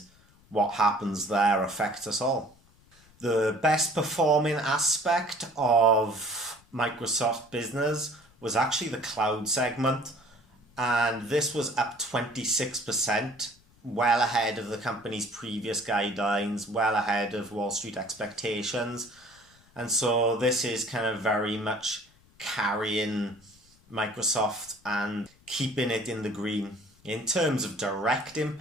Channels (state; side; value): noise; left; rumble, 29 dB below the sound